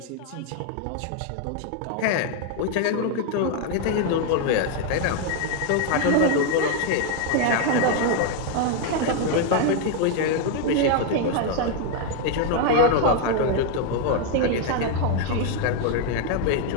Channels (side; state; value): both; different; correlation 0.00